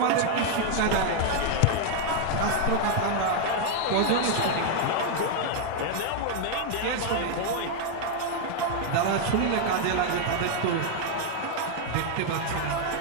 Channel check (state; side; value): different; both; correlation 0.00